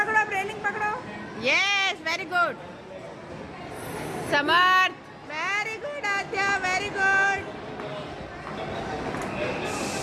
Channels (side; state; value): both; identical; correlation 1.00